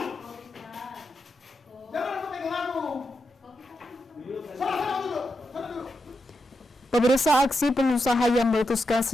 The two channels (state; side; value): normal; both; correlation 0.86